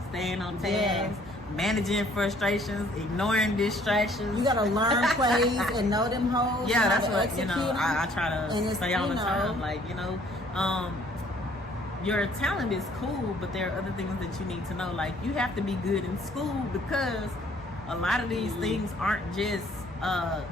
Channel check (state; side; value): normal; both; correlation 0.60